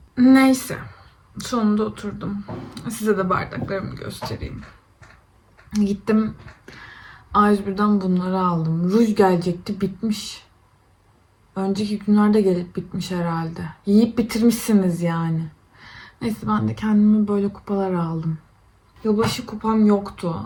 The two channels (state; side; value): identical; both; correlation 1.00